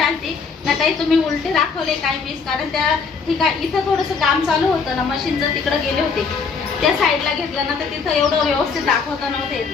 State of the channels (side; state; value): right; quieter; 5.3 dB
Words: आली ना, ताई तुम्ही उलटे दाखवले काही पीस, कारण त्या ठिकाणी इथं थोडंसं काम चालू होतं ना, मशीनचं तिकडे गेले होते. त्या साईडला घेतलं ना तर तिथं एवढं व्यवस्थित दाखवता नव्हतं